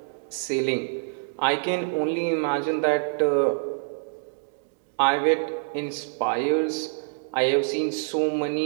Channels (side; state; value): left; silent; digital silence